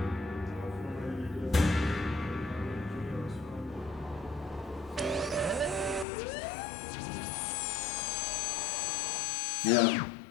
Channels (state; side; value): drops out; right; at 6.1 s